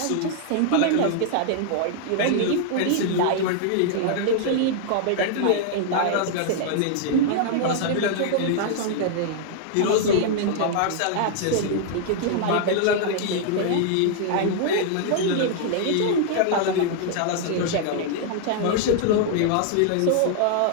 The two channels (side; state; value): both; different; correlation -0.01